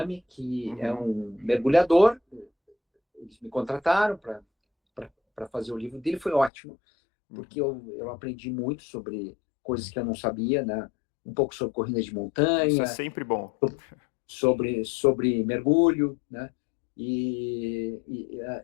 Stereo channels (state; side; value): drops out; right; at 6.5 s